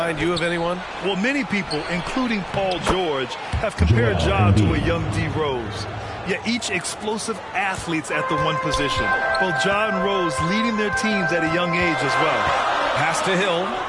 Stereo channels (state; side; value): identical; both; correlation 1.00